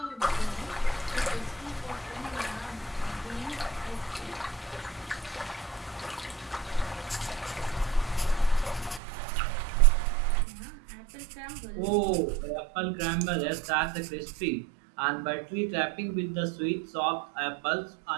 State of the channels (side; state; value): left; drops out; at 9.0 s